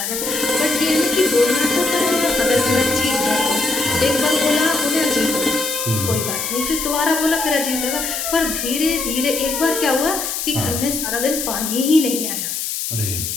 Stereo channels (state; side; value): noise; left; hiss, 3 dB below the sound